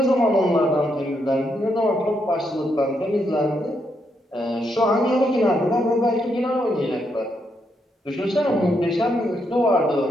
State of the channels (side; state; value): both; normal; correlation 0.79